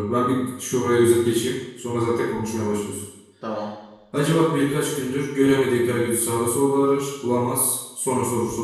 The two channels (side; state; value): both; identical; correlation 1.00